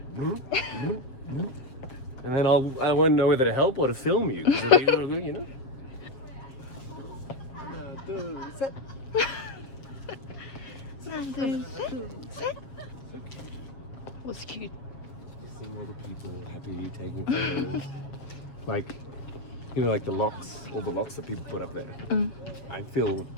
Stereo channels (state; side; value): late; right; 7.5 ms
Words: And then I won't know whether to help or to film you. 'Cause it'll be, you know? One, two, three. Was cute. Seeing all the people happy taking photos. Like, you know, like the locks, all the locks that people put up there. I